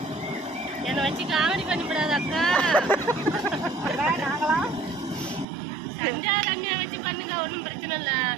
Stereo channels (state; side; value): drops out; left; at 5.5 s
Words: என்ன வச்சு காமெடி பண்ணிவிடாது அக்கா. சஞ்சா ரம்யா வச்சு பண்ணுங்க, ஒன்றும் பிரச்சனை இல்ல.